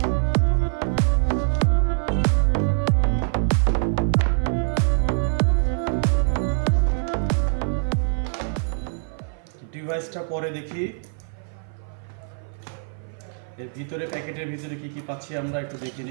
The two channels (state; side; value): silent; left; 56 dB below the other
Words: ডিভাইসটা পরে দেখি, এর ভিতরে প্যাকেটের ভিতরে কি কি পাচ্ছি আমরা একটু দেখে